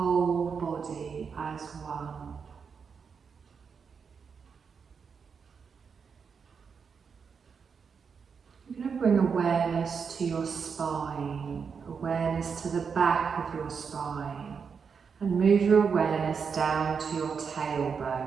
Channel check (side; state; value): left; quieter; 6.0 dB